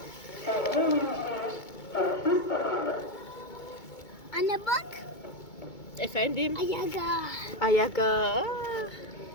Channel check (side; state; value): right; late; 2.2 ms